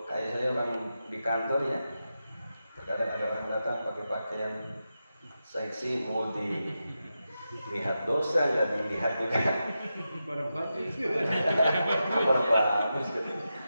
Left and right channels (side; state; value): both; inverted; correlation -0.89